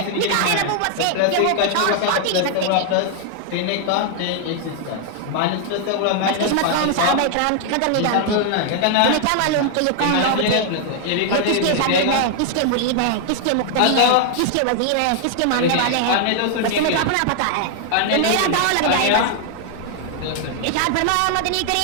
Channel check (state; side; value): different; both; correlation 0.00